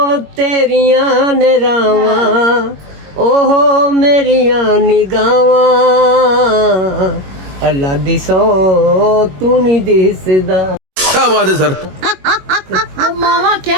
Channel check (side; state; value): left; late; 21 ms